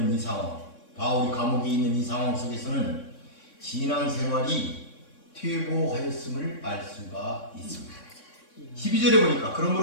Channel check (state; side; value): late; right; 3.6 ms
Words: 이 상황, 바울이 감옥에 있는 이 상황 속에서는 신앙생활이 퇴보하였음을 알 수가 있습니다. 12절에 보니까